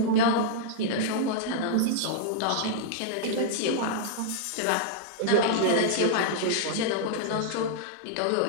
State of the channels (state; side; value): different; both; correlation -0.01